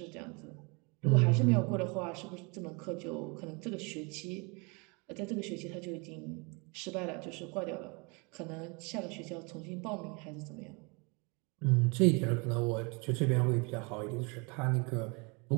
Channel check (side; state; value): left; quieter; 30.6 dB